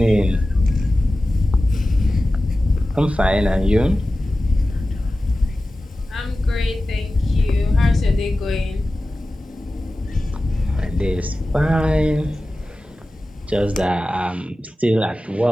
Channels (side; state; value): both; normal; correlation 0.95